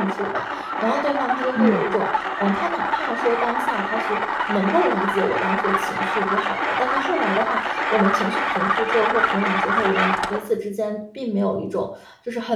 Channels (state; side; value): identical; both; correlation 1.00